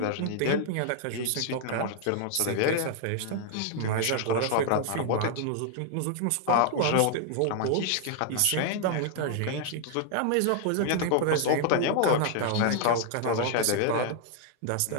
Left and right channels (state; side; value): different; both; correlation 0.00